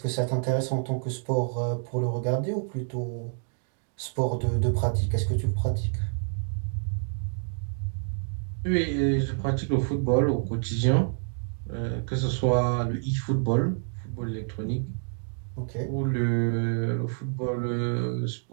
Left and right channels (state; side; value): silent; left; 59 dB below the other